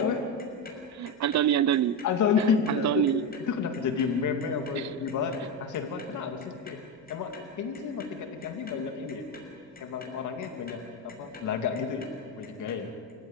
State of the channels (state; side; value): normal; both; correlation 0.12